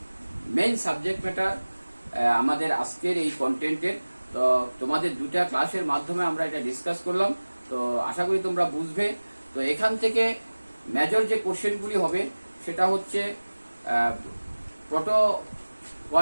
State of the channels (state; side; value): inverted; both; correlation -1.00